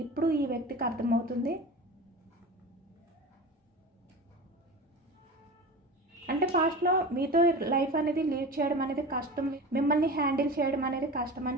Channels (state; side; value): normal; both; correlation 0.32